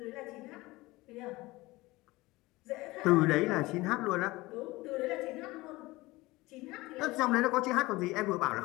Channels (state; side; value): quieter; right; 20.5 dB